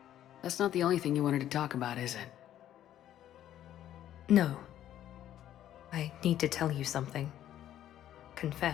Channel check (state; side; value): quieter; right; 11.8 dB